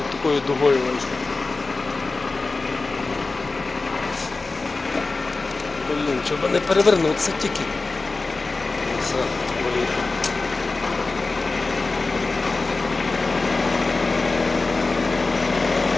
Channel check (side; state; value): right; quieter; 3.6 dB